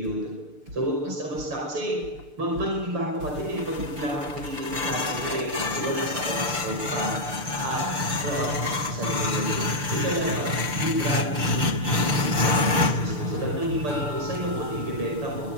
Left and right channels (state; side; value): late; left; 6.7 ms